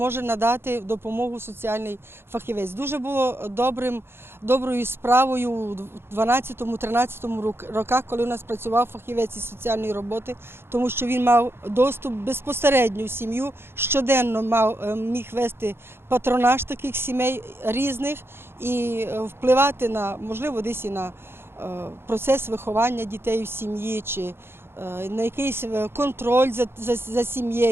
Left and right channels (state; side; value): late; left; 0.11 ms